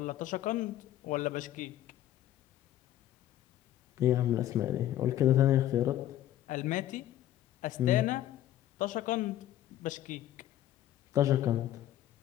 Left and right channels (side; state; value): right; quieter; 12.8 dB